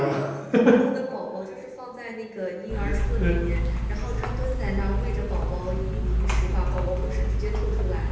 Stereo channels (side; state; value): both; identical; correlation 1.00